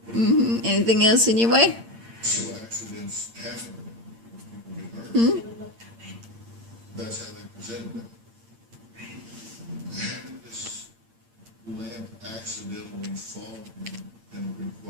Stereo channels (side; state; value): left; late; 8.8 ms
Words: Anything else in your way? Accidents happen. That's how they presented it. Having this lamp accidentally fall and